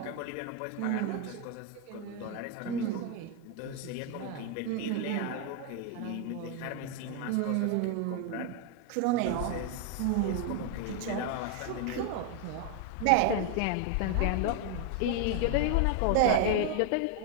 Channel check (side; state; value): both; different; correlation 0.01